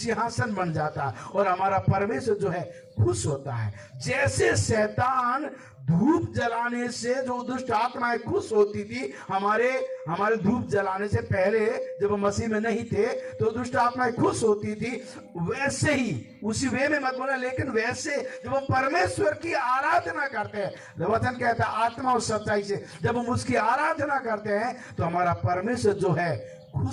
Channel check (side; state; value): both; identical; correlation 1.00